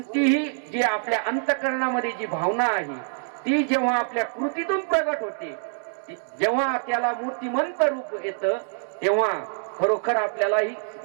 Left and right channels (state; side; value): silent; left; digital silence